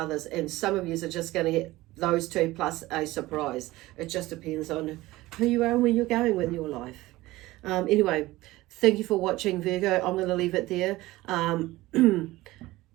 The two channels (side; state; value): left; quieter; 18.4 dB